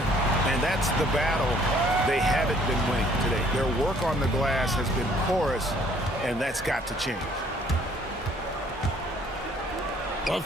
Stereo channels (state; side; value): normal; both; correlation 0.60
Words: And that's the battle they haven't been winning today. Their work on the glass has been porous, and that's got to change. A